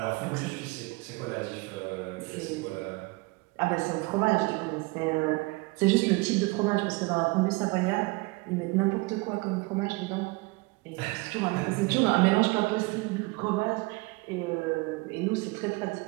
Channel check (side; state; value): left; quieter; 25.5 dB